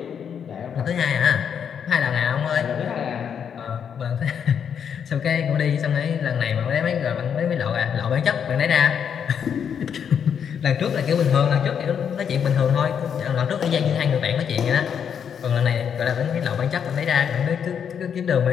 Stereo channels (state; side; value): quieter; right; 7.8 dB